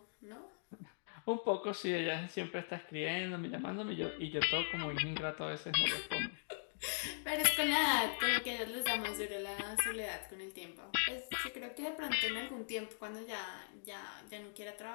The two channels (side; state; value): right; silent; digital silence